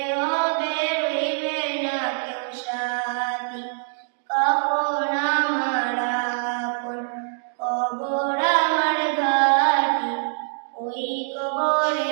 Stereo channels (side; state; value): left; silent; digital silence